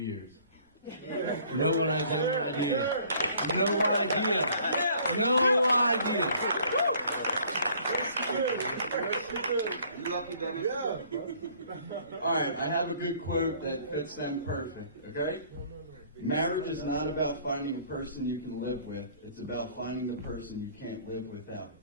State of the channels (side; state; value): both; inverted; correlation -0.56